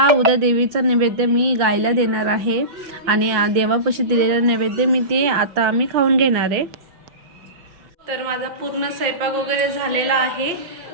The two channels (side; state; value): left; late; 5.9 ms